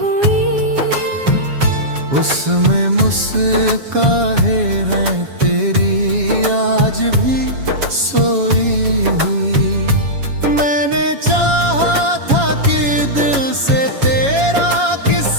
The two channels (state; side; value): late; left; 7.2 ms